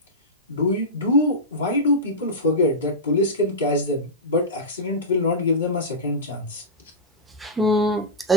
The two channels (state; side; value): normal; both; correlation -0.10